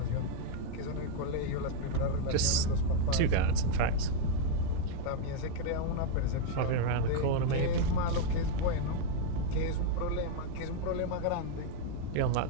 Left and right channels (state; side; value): different; both; correlation 0.00